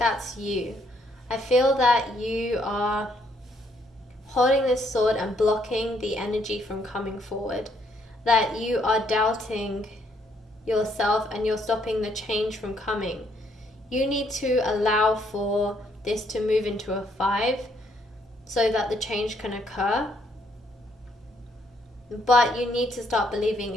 you. I feel that you are holding this sword and blocking the energy from coming forward. That you are doubting yourself and you're stopping the change from coming. You need to allow for this to move into a 5 so that the change can occur. But you need to start believing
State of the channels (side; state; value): both; normal; correlation 0.70